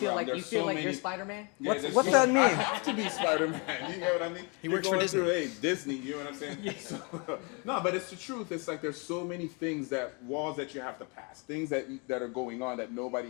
like there's you're many. Spider-Man? Yeah, What's there's that mean? I have to be Spider-Man. You get what I mean? He works You're for going Disney. through, hey, Disney. You know what I'm saying? So, no, but it's the truth. It's like there's so many things walls that you have to pass, things that are going on that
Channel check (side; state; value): right; quieter; 32.5 dB